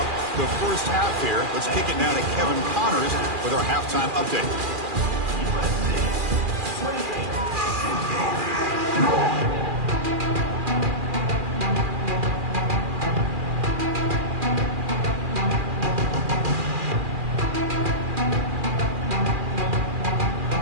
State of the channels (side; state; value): left; late; 2.4 ms